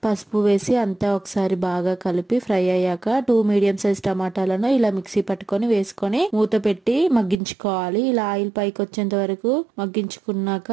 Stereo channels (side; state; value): left; drops out; at 7.4 s